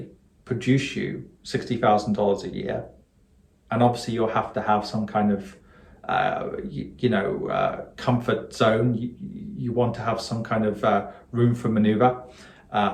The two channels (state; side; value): identical; both; correlation 1.00